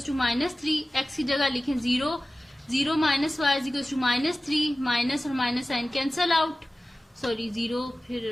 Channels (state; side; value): normal; both; correlation 0.96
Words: -3, x की जगह लिखें 0, 0 minus y is equal to -3, minus और minus sign cancel out, sorry 0 फिर